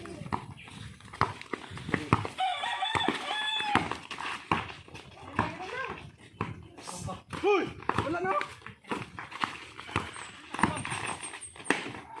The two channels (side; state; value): both; identical; correlation 1.00